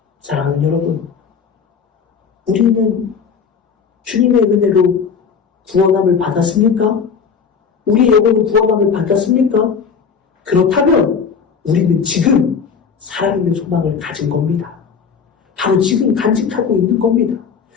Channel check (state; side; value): quieter; right; 6.3 dB